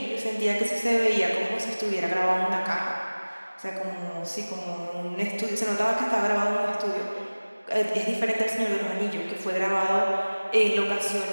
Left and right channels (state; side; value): inverted; both; correlation -1.00